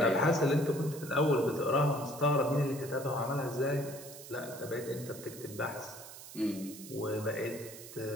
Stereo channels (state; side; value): noise; right; hiss, 14 dB below the sound